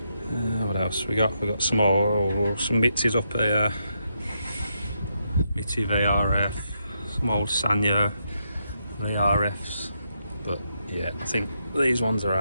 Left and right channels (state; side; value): inverted; both; correlation -0.81